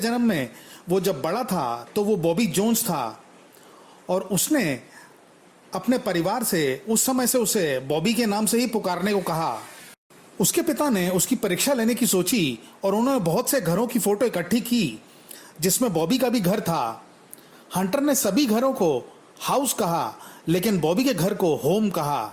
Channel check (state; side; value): identical; both; correlation 1.00